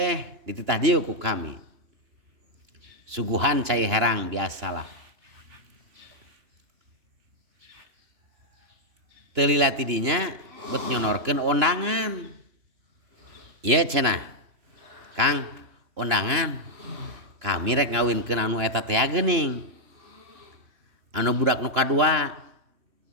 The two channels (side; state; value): left; late; 3.0 ms